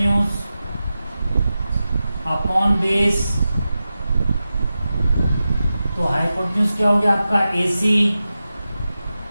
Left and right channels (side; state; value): both; inverted; correlation -0.93